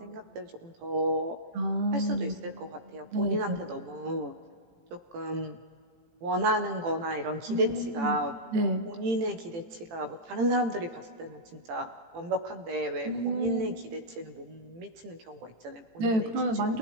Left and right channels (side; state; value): left; late; 18 ms